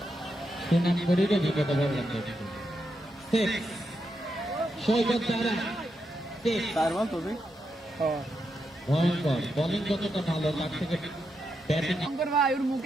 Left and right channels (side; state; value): both; normal; correlation 0.84